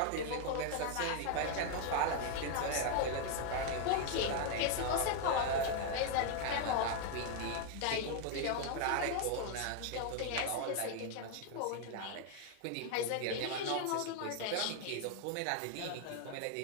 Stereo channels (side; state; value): both; different; correlation 0.00